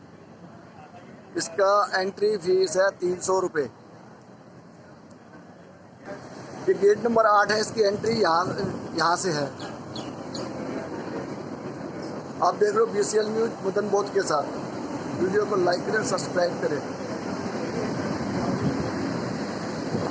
इसका एंट्री फीस है 300 रुपये। ये गेट नंबर 8 है, इसकी एंट्री यहाँ से है। आप देख रहे हो BCL न्यूज मदन बोध के साथ। वीडियो को लाइक करें, सब्सक्राइब करें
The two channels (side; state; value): both; identical; correlation 1.00